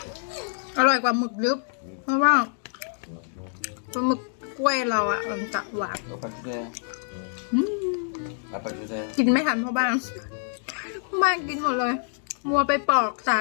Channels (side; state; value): right; silent; digital silence